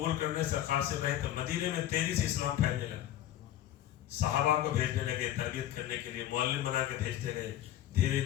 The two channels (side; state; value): right; quieter; 12.6 dB